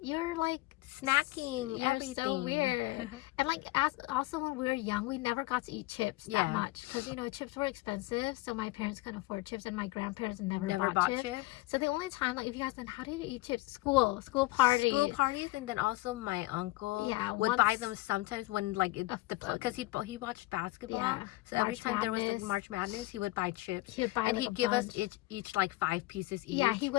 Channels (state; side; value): quieter; right; 20.3 dB